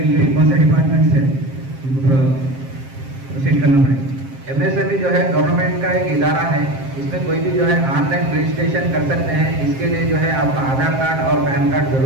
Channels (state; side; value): late; left; 7.5 ms